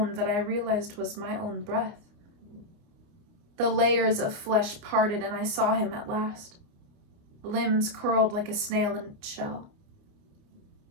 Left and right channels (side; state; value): left; late; 29 ms